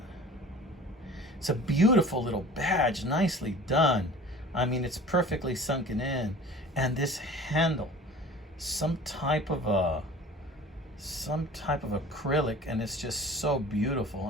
It's a beautiful little badge, nicely done. I mean, it's perfectly sunken in. And this handle, some type of acrylic, and it's just so beautiful.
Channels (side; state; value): both; normal; correlation 0.43